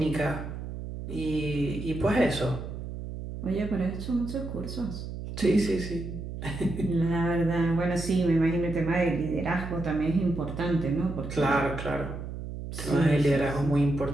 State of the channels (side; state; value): right; noise; hum, 8 dB below the sound